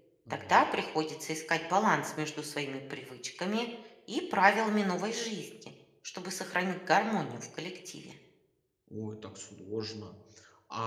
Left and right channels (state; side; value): identical; both; correlation 1.00